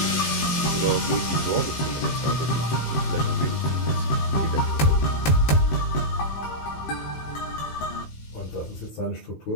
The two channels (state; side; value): late; right; 17 ms